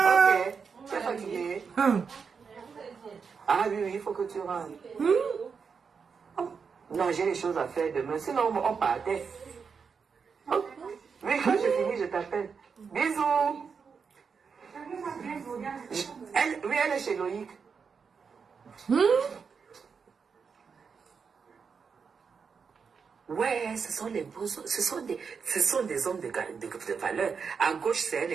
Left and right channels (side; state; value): left; quieter; 5.8 dB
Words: Tu es fatigué? Ah oui, il faut que tu rentres. Non, j'ai des choses à faire demain. Sinon, on partait. Oh. Oui, quand je finis, je t'appelle. Bisous. Elle est chez Loïc. Ouais, ce sont des hommes de valeur. À gauche, c'est un